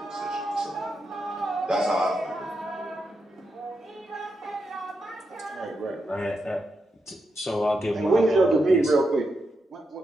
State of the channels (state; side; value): normal; both; correlation 0.85